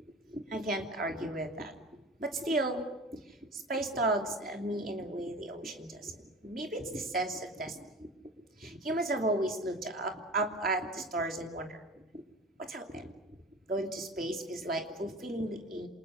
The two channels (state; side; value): normal; both; correlation 0.37